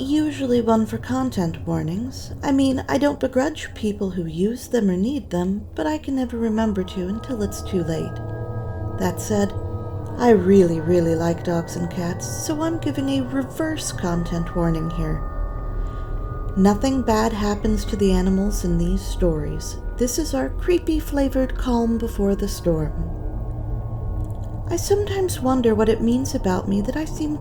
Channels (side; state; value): both; identical; correlation 1.00